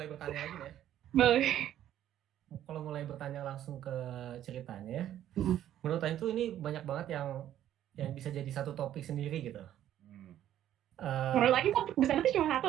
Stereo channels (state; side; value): quieter; left; 11.6 dB